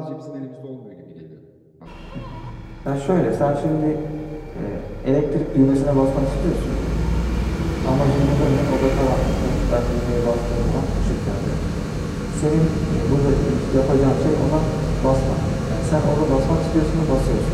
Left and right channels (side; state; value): both; identical; correlation 1.00